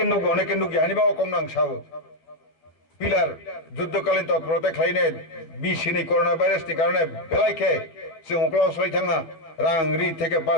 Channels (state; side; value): late; right; 13 ms